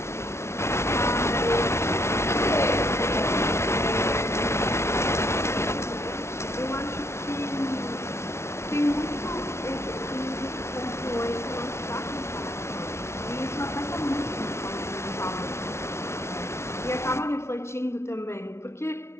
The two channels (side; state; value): right; late; 0.13 ms